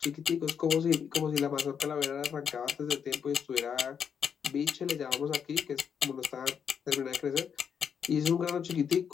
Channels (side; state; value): right; quieter; 7.4 dB